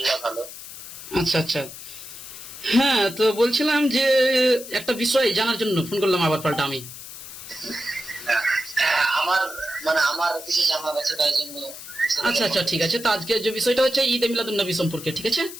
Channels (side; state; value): left; noise; hiss, 13 dB below the sound